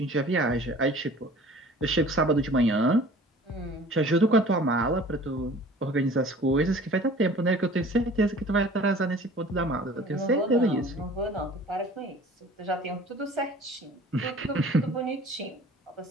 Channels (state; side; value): normal; both; correlation 0.47